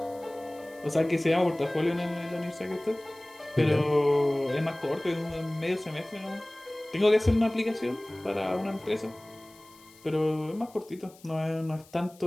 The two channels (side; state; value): left; noise; hiss, 25 dB below the sound